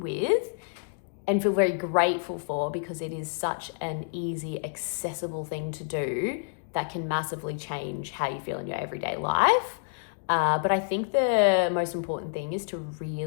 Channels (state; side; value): silent; right; digital silence